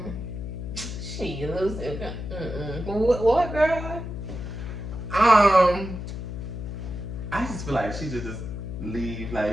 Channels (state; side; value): noise; left; hum, 7 dB below the sound